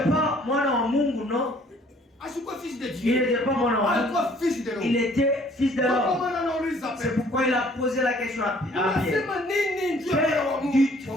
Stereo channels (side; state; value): both; normal; correlation 0.58